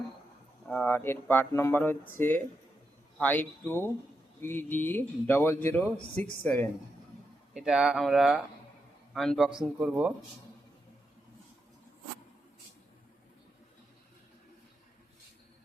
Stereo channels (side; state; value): both; normal; correlation 0.85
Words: আর এর পার্ট নাম্বার হচ্ছে 52PD0067। এটা আমরা আনবক্সিং করব।